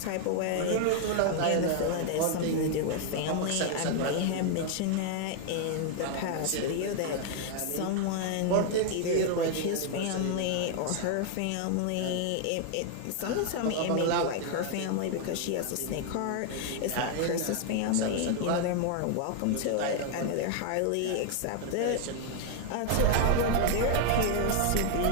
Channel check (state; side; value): different; both; correlation 0.00